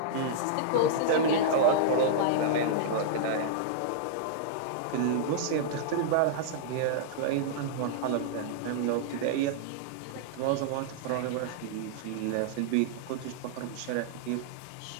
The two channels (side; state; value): both; different; correlation -0.02